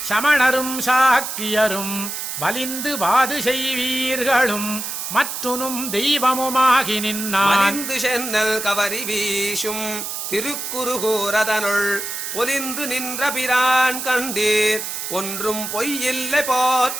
சமணரும் சாக்கியரும் வலிந்து வாது செய்வீர்களும் மற்றுனும் தெய்வமுமாகி நின்னான் மலிந்து சென்னல் கவரி வீசும் திருக்குறுகூரதனுள் பொலிந்து நின்ற பிரான் கண்டீர் ஒன்றும் பொய்யில்லை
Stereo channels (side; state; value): right; noise; hiss, 5 dB below the sound